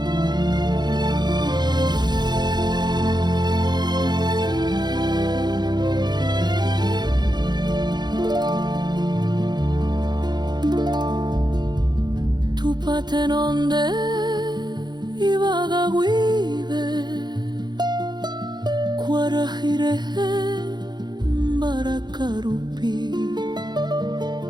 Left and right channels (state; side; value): late; left; 0.21 ms